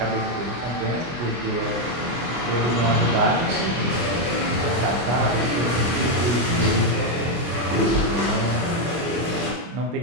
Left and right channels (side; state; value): left; late; 24 ms